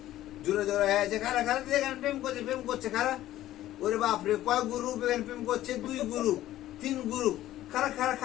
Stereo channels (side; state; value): right; quieter; 14.1 dB